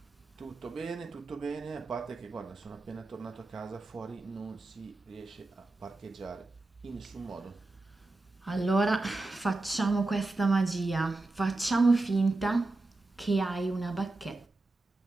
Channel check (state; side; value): quieter; left; 3.1 dB